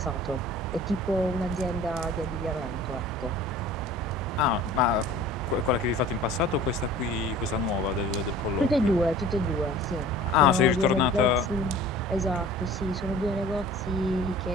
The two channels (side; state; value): both; normal; correlation 0.45